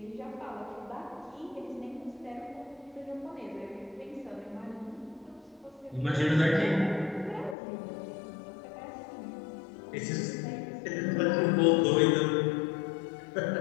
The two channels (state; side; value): drops out; right; at 7.6 s